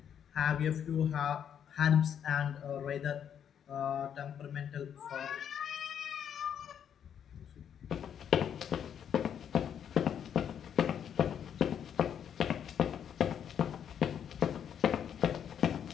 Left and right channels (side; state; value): right; quieter; 8.7 dB